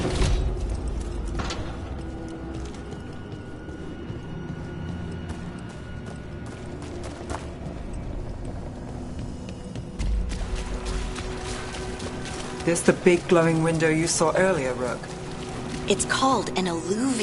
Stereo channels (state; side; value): identical; both; correlation 1.00